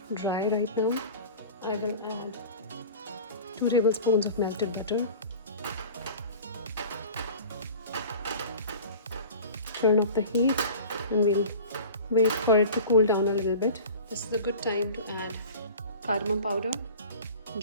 dry right now, I will add 2 tablespoons of melted butter. Turn up the heat and we'll wait for it to cool down a little bit. This is a good time to add cardamom powder,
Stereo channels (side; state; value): both; inverted; correlation -0.39